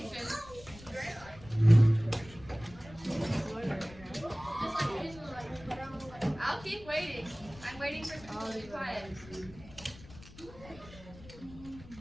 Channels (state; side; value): noise; left; rumble, 19 dB below the sound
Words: I'll keep waiting. I'm waiting for people to be quiet.